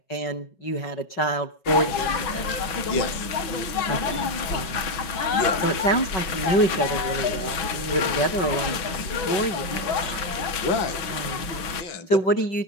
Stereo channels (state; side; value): late; right; 5.4 ms